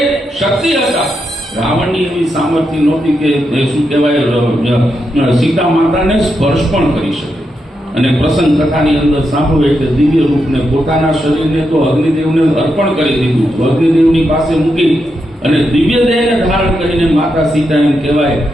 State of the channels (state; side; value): normal; both; correlation 0.84